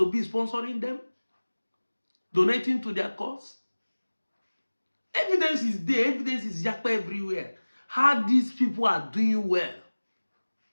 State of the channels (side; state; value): both; inverted; correlation -1.00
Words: be sponsoring them? Donating to their cause? Evidence is there. Evidence is yakpa everywhere. How these people are doing well.